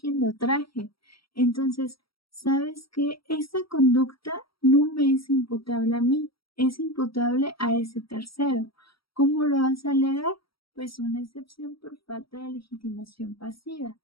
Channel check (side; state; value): right; late; 0.75 ms